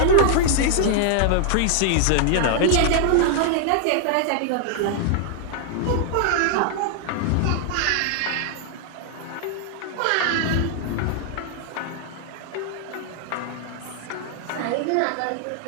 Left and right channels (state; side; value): different; both; correlation 0.00